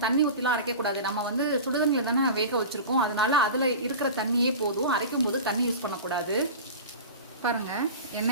தண்ணி ஊற்றிலாம் அரைக்க கூடாது. நம்ம வந்து சுடுதண்ணில தானே வேக வச்சிருக்கோம், அதனால அதுல இருக்கிற தண்ணியே போதும். அரைக்கும் போது தண்ணி யூஸ் பண்ணக்கூடாது. பாருங்க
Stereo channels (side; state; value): both; inverted; correlation -0.32